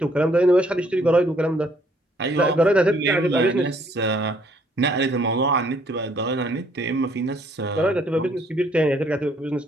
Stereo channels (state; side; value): normal; both; correlation 0.65